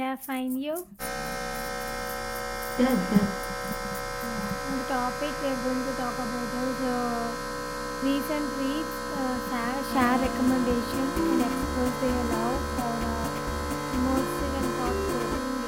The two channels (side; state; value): both; identical; correlation 1.00